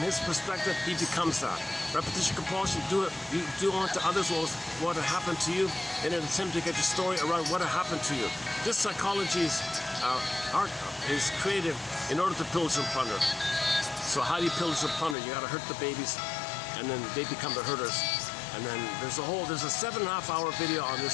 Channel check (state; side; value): drops out; right; at 15.2 s